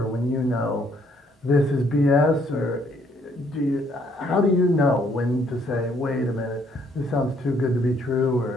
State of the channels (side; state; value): both; normal; correlation 0.67